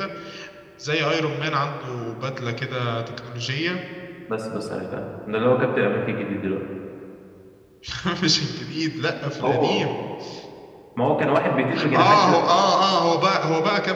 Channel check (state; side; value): identical; both; correlation 1.00